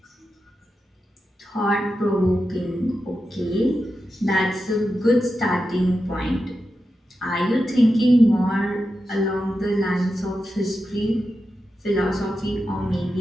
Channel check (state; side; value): normal; both; correlation 0.89